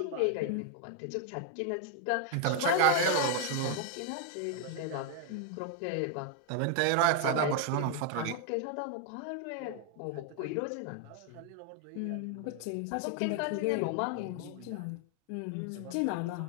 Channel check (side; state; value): both; different; correlation 0.00